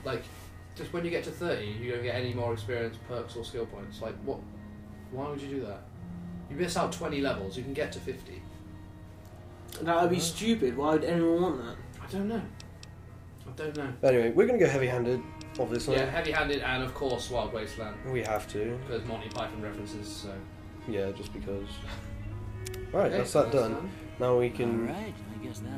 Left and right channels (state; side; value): identical; both; correlation 1.00